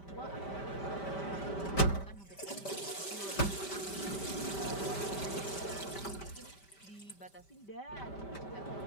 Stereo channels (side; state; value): right; late; 5.1 ms